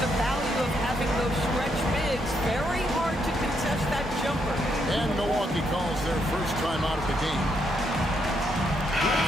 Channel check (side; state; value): both; normal; correlation 0.77